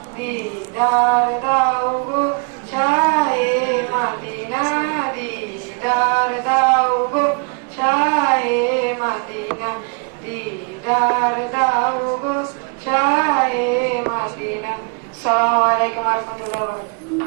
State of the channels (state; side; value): quieter; left; 37.5 dB